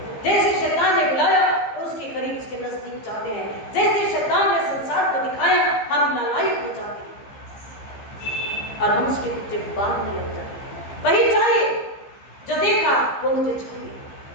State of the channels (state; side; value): late; right; 15 ms